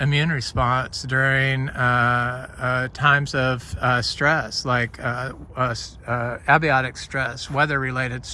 response during times of stress, like abiotic stress, weather-related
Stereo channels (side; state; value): both; identical; correlation 1.00